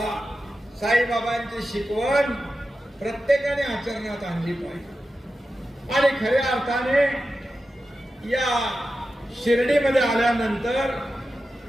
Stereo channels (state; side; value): normal; both; correlation 0.92